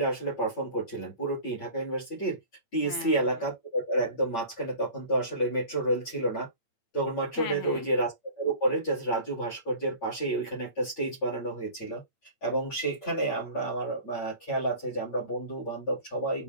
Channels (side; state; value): right; late; 8.8 ms